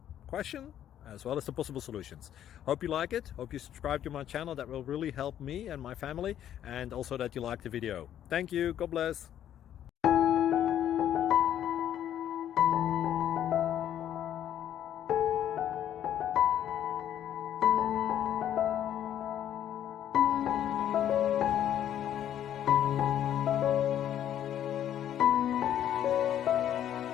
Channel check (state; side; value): quieter; right; 10.8 dB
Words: question as well as the possible solutions. Hope you like it, hope you subscribe to my channel. That will really help me and my family, and also that you like the video. Thank you, God bless.